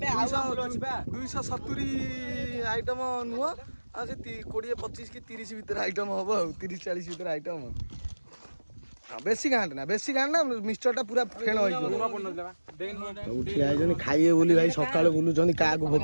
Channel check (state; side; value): inverted; both; correlation -1.00